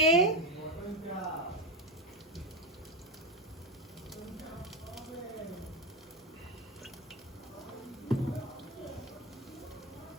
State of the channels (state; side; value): normal; both; correlation 0.14